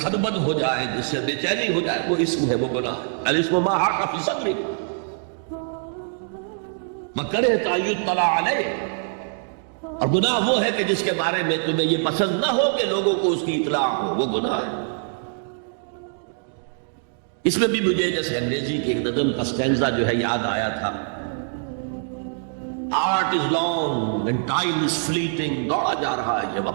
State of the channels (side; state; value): left; silent; digital silence